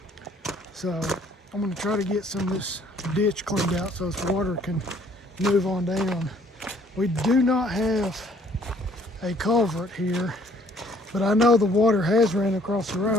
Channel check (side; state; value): both; normal; correlation 0.60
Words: So I'm going to try to get some of this ditch cleaned out so this water can move on down. We do not have a culvert here, but I know the water has ran across the